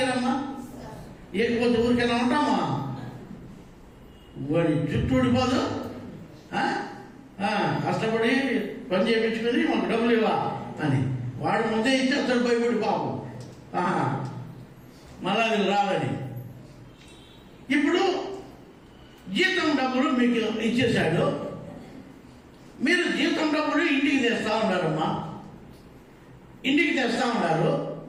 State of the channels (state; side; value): identical; both; correlation 1.00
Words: ఇరమ్మా? ఇకపోతే ఊరికైనా ఉంటామా? వాడి జుట్టు ఊడిపోదు. కష్టపడి పని చేయించుకొని మాకు డబ్బులు ఇవ్వా అని వాడు ముందే ఇచ్చేస్తాడు భయపడి పాపం, మళ్ళా అది రాదని. ఇప్పుడు జీతం డబ్బులు మీకు ఇచ్చేశాడు, మీరు జీతం డబ్బులు ఇంటికి తెస్తా ఉన్నారమ్మా, ఇంటికి తెస్తా ఉన్నారు.